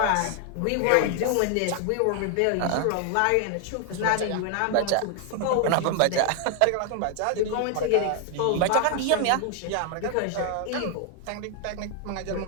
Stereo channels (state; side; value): different; both; correlation 0.00